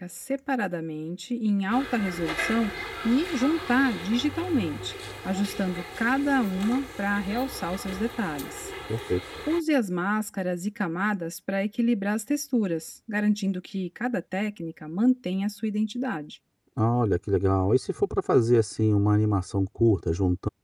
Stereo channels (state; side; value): identical; both; correlation 1.00